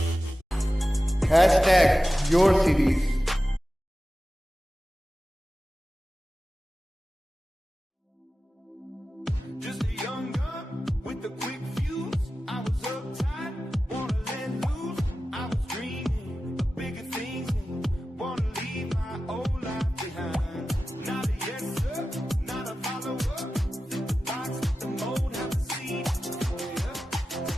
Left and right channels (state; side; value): normal; both; correlation 0.94